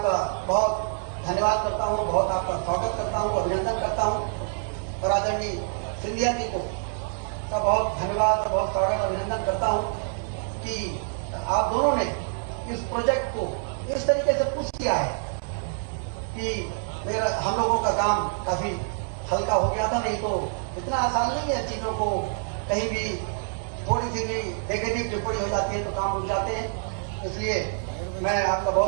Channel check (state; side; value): silent; left; digital silence